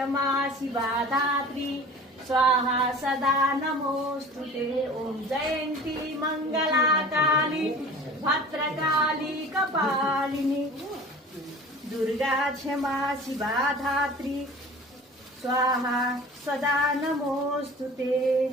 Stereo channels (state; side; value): normal; both; correlation 0.42